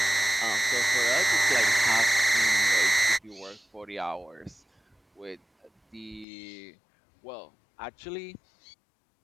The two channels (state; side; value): drops out; right; at 6.2 s